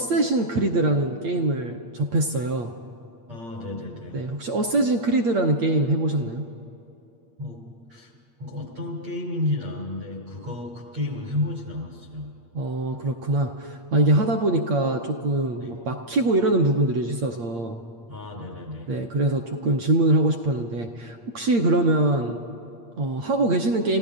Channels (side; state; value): left; late; 8.6 ms